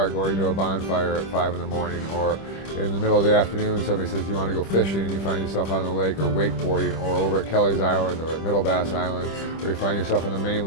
going to a bonfire at 5 in the morning, or in the middle of the afternoon somebody says you want to go fishing and you find yourself on the lake, or wakeboarding, or over at Kelly's Island or at Middle Bass Island, or you find yourself on the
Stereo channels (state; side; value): late; right; 25 ms